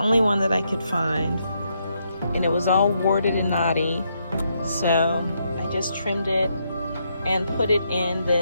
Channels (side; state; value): both; inverted; correlation -0.78